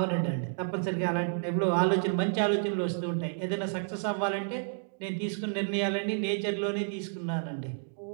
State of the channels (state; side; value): silent; left; digital silence